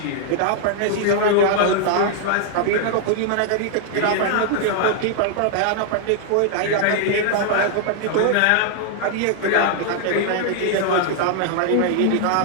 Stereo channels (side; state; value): both; different; correlation -0.01